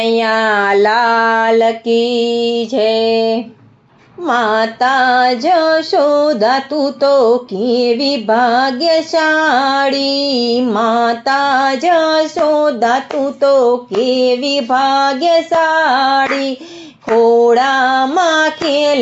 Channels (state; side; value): identical; both; correlation 1.00